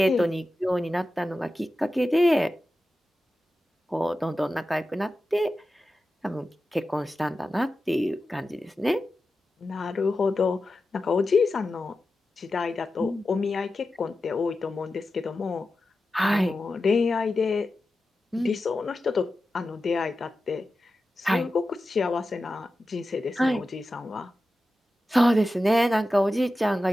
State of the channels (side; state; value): both; normal; correlation 0.93